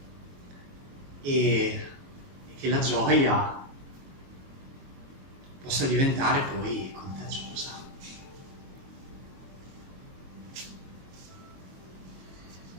E che la gioia possa diventare poi contagiosa.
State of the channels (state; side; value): late; left; 22 ms